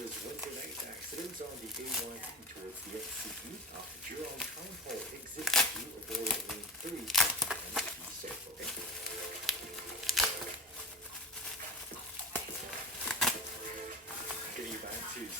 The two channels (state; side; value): normal; both; correlation 0.28